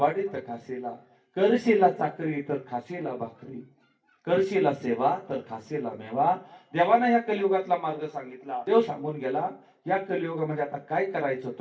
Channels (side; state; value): both; identical; correlation 1.00